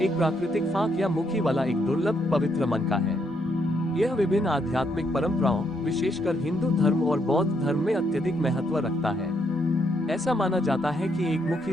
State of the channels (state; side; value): normal; both; correlation 0.75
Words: एक प्राकृतिक फांक या मुखी वाला एक दुर्लभ पवित्र मन का है। यह विभिन्न आध्यात्मिक परंपराओं, विशेषकर हिंदू धर्म और बौद्ध धर्म में अत्यधिक महत्व रखता है। ऐसा माना जाता है कि एक